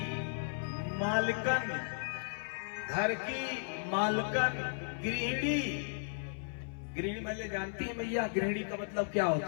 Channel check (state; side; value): silent; right; 54 dB below the other